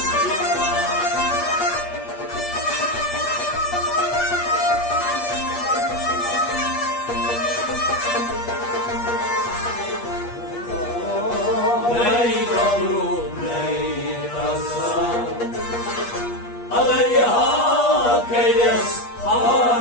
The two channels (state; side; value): late; right; 8.4 ms